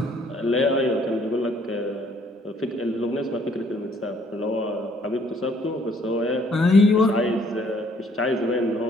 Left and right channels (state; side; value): normal; both; correlation 0.63